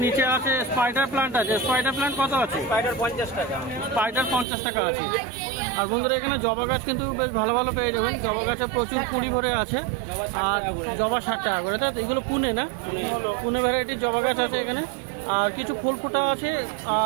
নিচে আছে স্পাইডার প্লান্ট আছে। স্পাইডার প্লান্ট কত আছে? স্পাইডার 50 টাকা। স্পাইডার 50 টাকা আছে। আর বন্ধুরা, এখানে জবা গাছ কিন্তু বেশ ভালো ভালো পেয়ে যাবেন। জবা গাছে প্রচুর কুড়ি ভরে আছে। আর জবা 60 টাকা করে, তাই তো? এগুলো পুনে, না পুনে ভ্যারাইটির জবা গাছ আছে এখানে। আর কিছু ফুল ফোটা আছে,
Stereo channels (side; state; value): left; drops out; at 4.5 s